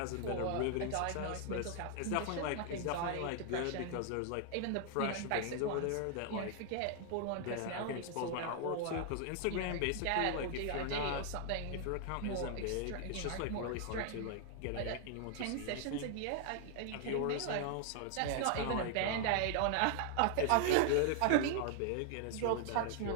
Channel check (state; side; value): different; both; correlation 0.00